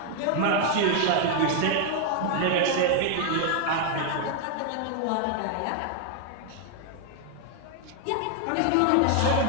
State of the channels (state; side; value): different; both; correlation 0.00